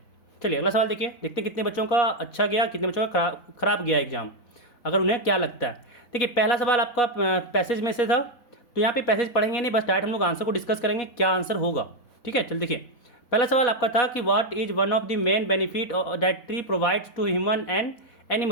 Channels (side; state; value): right; late; 4.1 ms